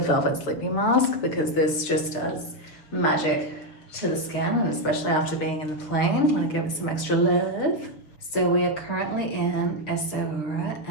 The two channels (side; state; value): right; late; 6.7 ms